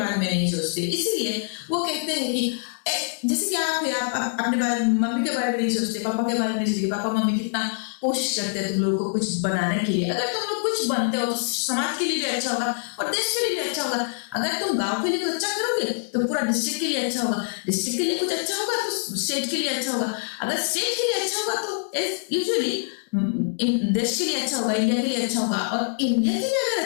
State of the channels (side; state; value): right; silent; digital silence